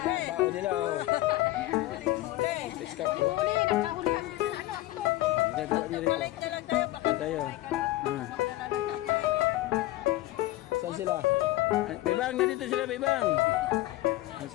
Bao nila oh. Iskap po. Gagawa niyo rito. Tayo. Saan sila? Bebang, nandito sila Bebang. Saan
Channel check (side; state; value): right; quieter; 17.1 dB